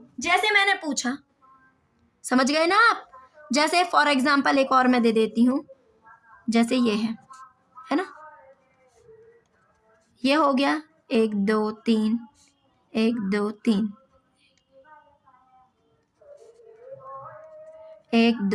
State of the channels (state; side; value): identical; both; correlation 1.00